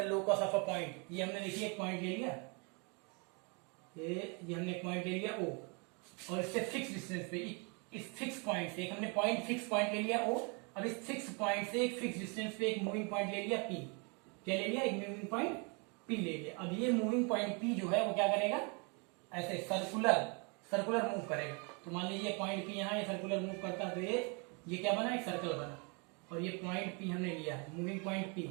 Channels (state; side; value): quieter; left; 33.4 dB